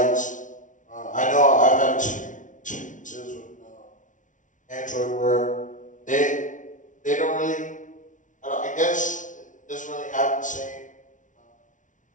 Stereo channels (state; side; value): late; right; 0.37 ms